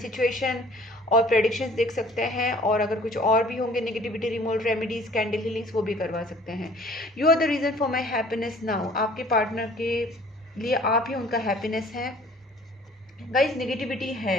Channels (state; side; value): normal; both; correlation 0.52